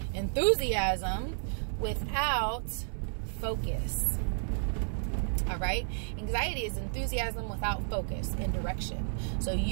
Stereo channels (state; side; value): silent; left; 56 dB below the other